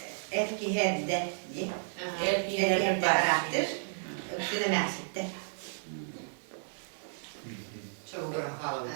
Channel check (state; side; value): silent; left; digital silence